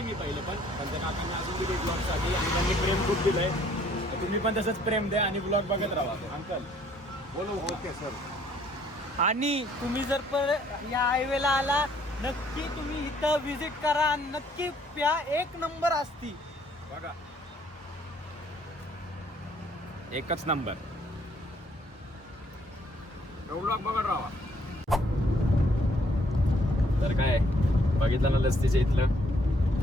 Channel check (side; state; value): both; normal; correlation 0.64